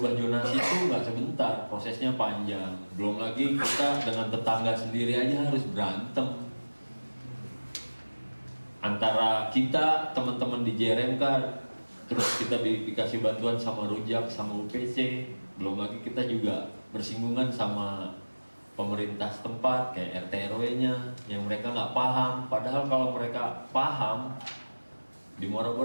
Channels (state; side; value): inverted; both; correlation -1.00